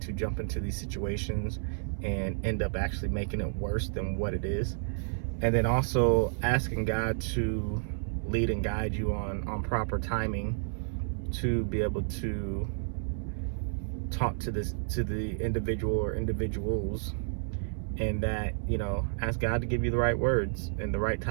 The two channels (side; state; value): left; silent; 57 dB below the other